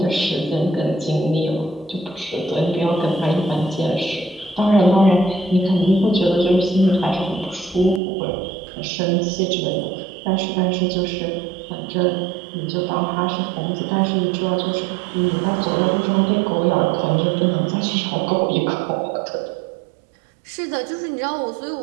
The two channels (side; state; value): left; drops out; at 8.0 s